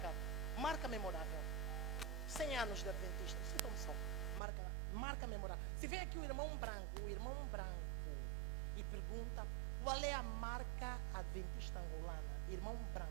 Marca memorável. 100 anos de Adventista. Citam-me só. Marca memorável. Se vem aqui o irmão branco e pergunta qual é a marca adventista angolana. Irmão branco.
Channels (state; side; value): drops out; left; at 4.4 s